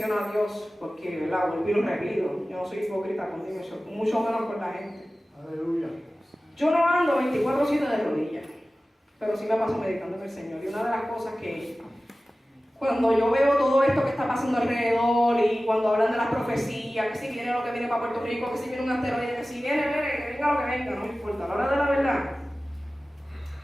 a Dios, porque, ¿verdad? Vuelvo y lo repito. Yo no soy hipócrita contigo, mucho menos con la gente. Aleluya. Yo no ando 24/7 de rodillas, pero sí me paso meditando en el Señor. Y una de las cosas que, cuando yo veo todo esto que está pasando alrededor y cuando hablan de las profecías, que si viene lo que viene para Puerto Rico, que si viene un asteroide, que si viene, que venga lo que venga, no me importa. A la hora de la verdad,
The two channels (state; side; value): normal; both; correlation 0.96